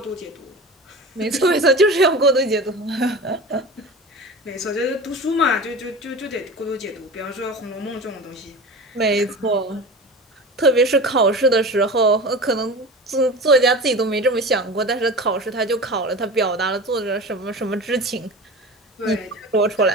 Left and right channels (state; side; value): normal; both; correlation 0.33